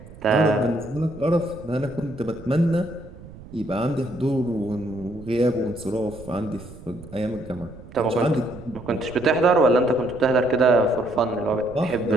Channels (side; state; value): right; noise; rumble, 17 dB below the sound